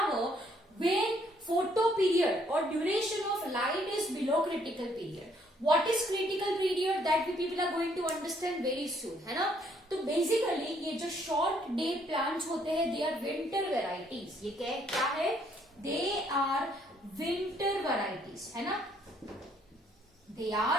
when photo period or duration of light is below critical period. What is critical period? That we people are going to understand very soon, है ना? तो basically ये जो short day plants होते हैं, दे are winter varieties. ये क्या है? दे आर विंटर वेराइटीज, है ना? They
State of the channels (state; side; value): normal; both; correlation 0.67